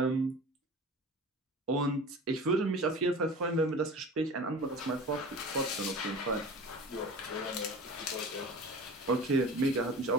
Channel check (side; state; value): both; normal; correlation 0.37